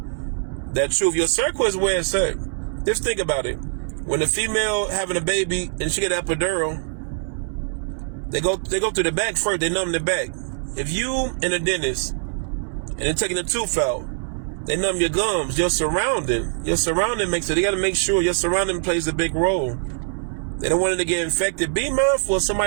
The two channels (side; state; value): left; silent; 63 dB below the other